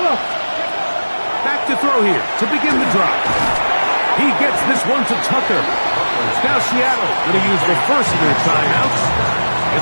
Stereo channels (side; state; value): both; inverted; correlation -1.00